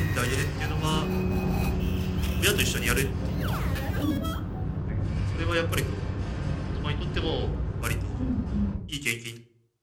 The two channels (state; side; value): identical; both; correlation 1.00